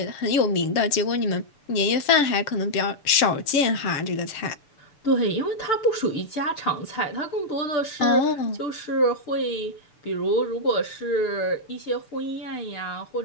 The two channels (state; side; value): late; right; 6.9 ms